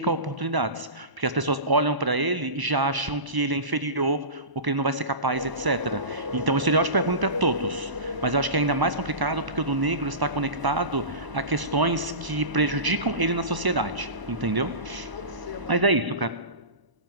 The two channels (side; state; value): left; late; 1.0 ms